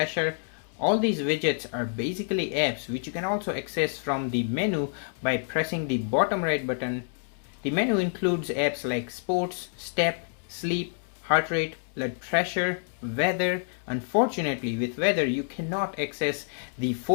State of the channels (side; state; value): right; silent; 59 dB below the other